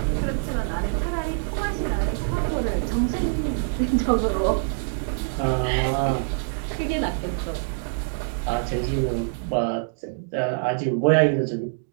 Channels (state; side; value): silent; left; digital silence